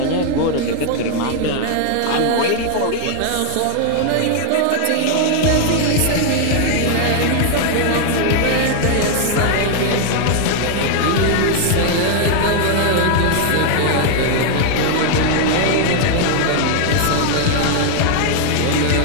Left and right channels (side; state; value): both; different; correlation 0.00